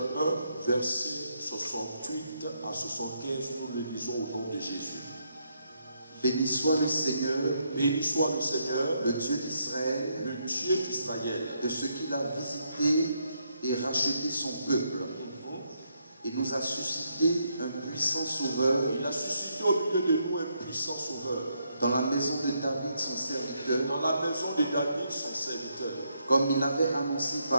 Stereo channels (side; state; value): both; inverted; correlation -0.77